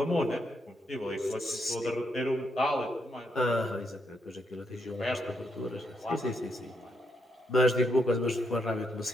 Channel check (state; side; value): normal; both; correlation 0.78